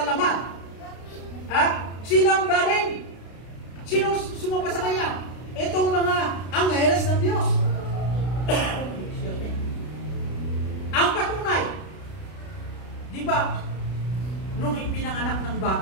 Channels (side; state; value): right; late; 32 ms